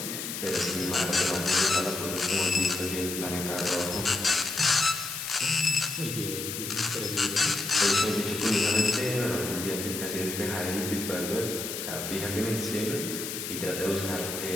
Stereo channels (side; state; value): left; noise; hiss, 5 dB below the sound